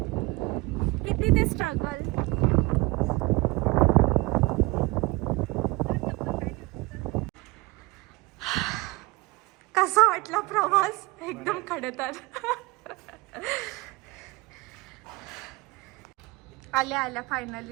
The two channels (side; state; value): left; quieter; 23.4 dB